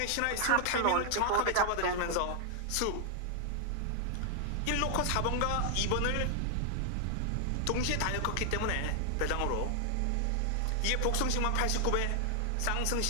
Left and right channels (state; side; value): different; both; correlation 0.00